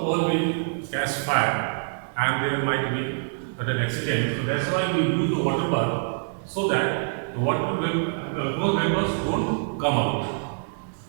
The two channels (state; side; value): silent; left; digital silence